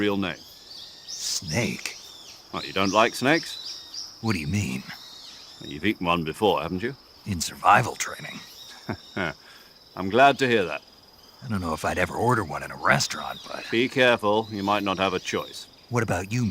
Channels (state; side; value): identical; both; correlation 1.00